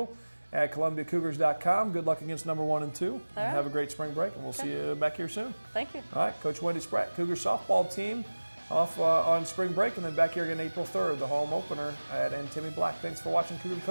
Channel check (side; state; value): both; inverted; correlation -1.00